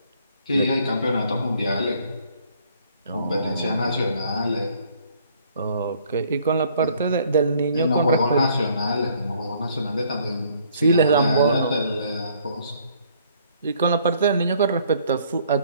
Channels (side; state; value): both; inverted; correlation -0.63